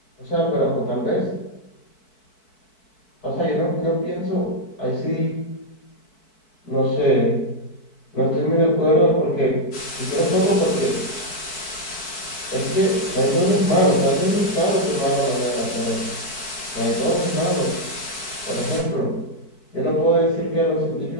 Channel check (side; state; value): right; late; 4.6 ms